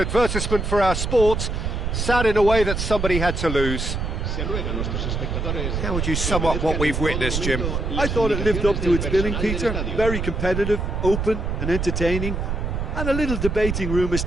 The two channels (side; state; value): right; noise; rumble, 2 dB below the sound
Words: for our sport. Sad in a way that somebody had to lose. How would you sum up what we've witnessed, Jim? I thought it lived up to its billing, Peter. Very competitive, open and entertaining, and a little debating room as